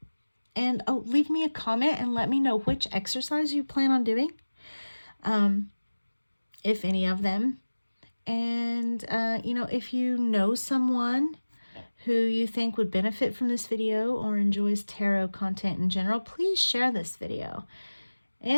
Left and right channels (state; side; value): inverted; both; correlation -1.00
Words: And leave me a comment and let me know which exercise you plan on doing, if any of them. And, if you know someone who you think would benefit from this video or enjoys tarot content in general, please share this video.